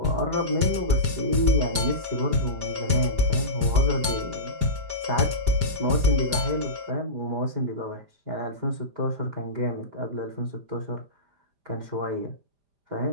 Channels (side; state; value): left; late; 5.0 ms